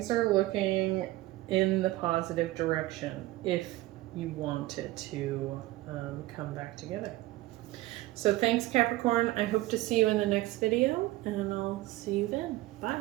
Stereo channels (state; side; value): quieter; left; 18.0 dB